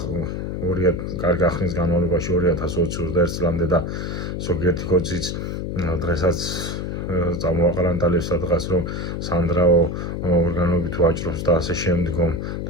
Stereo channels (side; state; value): left; noise; hum, 4 dB below the sound